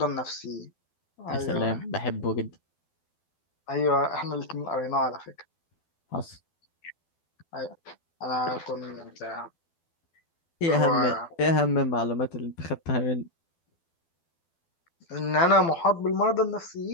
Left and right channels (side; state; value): right; late; 12 ms